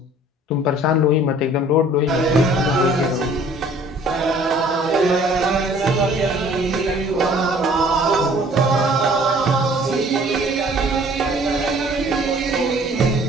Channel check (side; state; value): both; normal; correlation 0.54